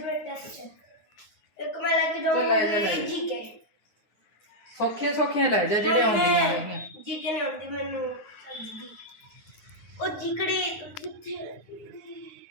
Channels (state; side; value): late; right; 9.5 ms